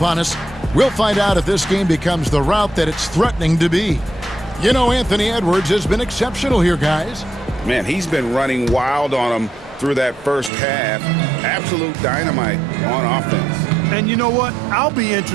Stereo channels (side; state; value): left; drops out; at 10.5 s